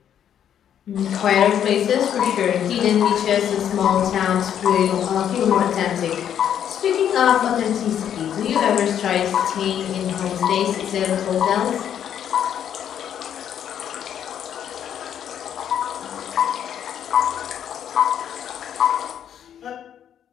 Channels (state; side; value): quieter; right; 9.5 dB